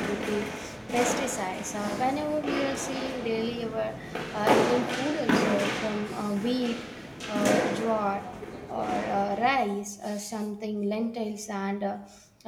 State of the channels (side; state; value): both; identical; correlation 1.00